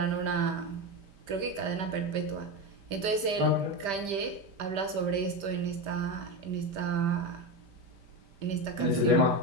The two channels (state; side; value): late; left; 5.1 ms